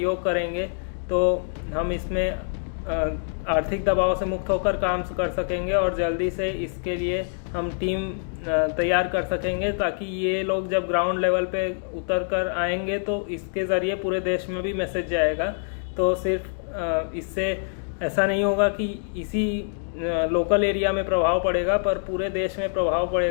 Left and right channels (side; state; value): right; silent; digital silence